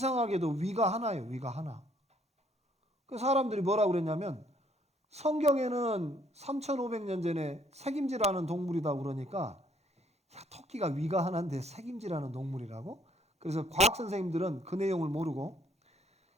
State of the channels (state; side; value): normal; both; correlation 0.65